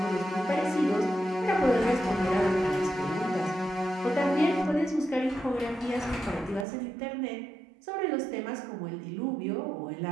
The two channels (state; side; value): drops out; left; at 6.7 s